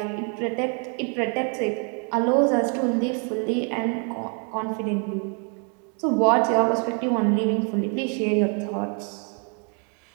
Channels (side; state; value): left; quieter; 38.9 dB